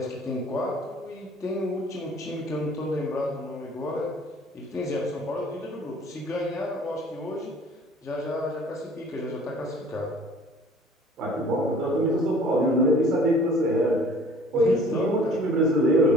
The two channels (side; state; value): both; normal; correlation 0.51